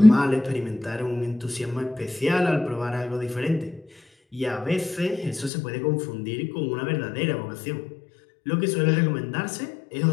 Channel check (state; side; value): drops out; right; at 5.5 s